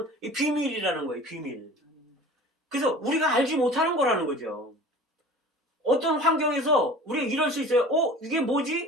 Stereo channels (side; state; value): both; normal; correlation 0.42